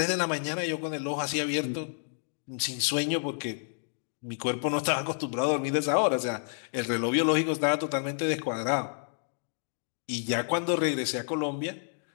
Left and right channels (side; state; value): right; silent; digital silence